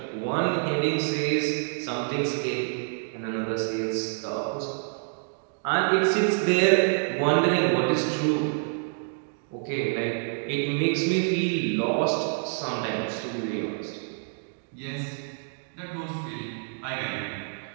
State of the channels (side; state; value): left; silent; 60 dB below the other